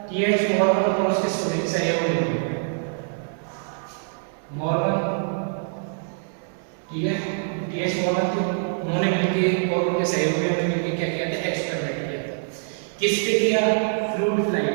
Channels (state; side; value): silent; left; digital silence